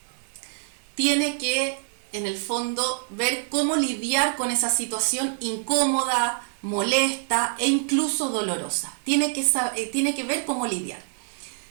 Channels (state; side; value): silent; left; digital silence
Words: tiene que, en el fondo, ver cómo lidiar con esa situación incómoda, molesta e incluso dolorosa. Tiene que ver cómo lidiar.